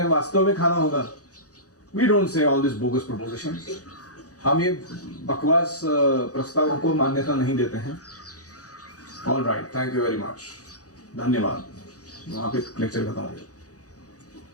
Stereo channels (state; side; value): late; right; 0.67 ms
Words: वास्तव में खाना होगा। We don't say all this bogus proposition. हम ये बकवास प्रस्तावों को मान्यता नहीं देते हैं। All right, thank you very much, धन्यवाद। वहां पे लेक्चर खत्म हो गया।